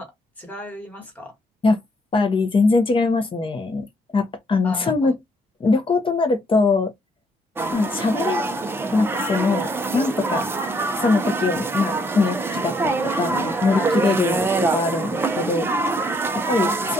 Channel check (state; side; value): normal; both; correlation 0.70